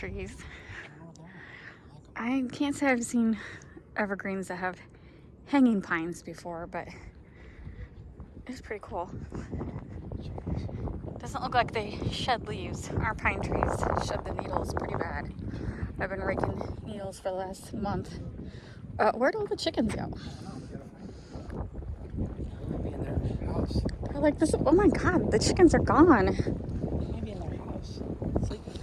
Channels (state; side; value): identical; both; correlation 1.00